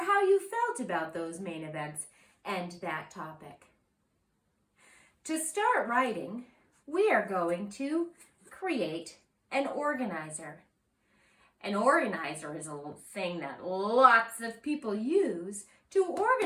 how you felt about those main events and that topic. To start writing, we are going to create an organizer. An organizer is a thing that lots of people use to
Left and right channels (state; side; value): identical; both; correlation 1.00